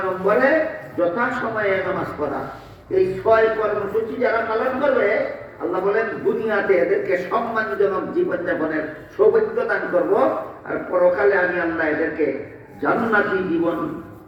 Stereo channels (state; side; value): identical; both; correlation 1.00